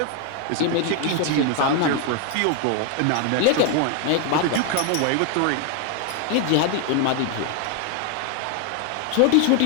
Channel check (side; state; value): both; different; correlation 0.01